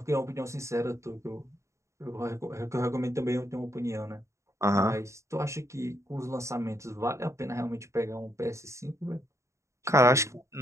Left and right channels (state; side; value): late; left; 0.14 ms